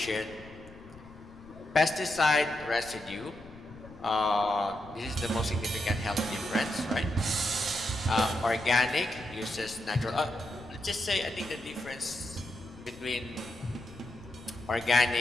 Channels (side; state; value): left; noise; rumble, 20 dB below the sound